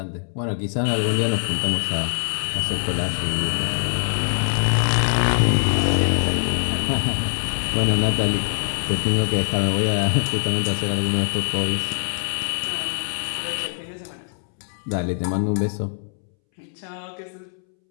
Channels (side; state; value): right; silent; 64 dB below the other